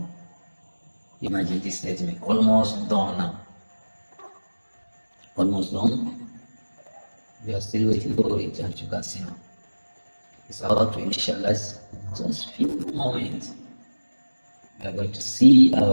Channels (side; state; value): both; inverted; correlation -1.00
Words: Imagine this statement, almost done now. Almost done. We are still waiting for it, as you can see now. It's about to initialize. Just few moments. We are going to see